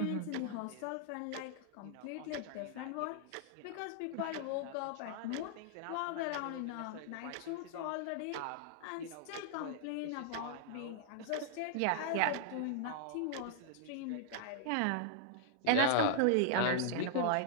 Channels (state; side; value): different; both; correlation -0.01